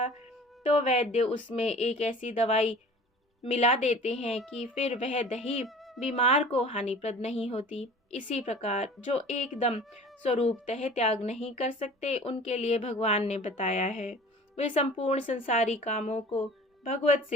तो वैद्य उसमें एक ऐसी दवाई मिला देते हैं कि फिर वह दही बीमार को हानिप्रद नहीं होती। इसी प्रकार जो एकदम स्वरूपतः त्याग नहीं कर सकते, उनके लिए भगवान ने बताया है वे संपूर्ण संसारी कामों को भगवत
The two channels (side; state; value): both; normal; correlation 0.43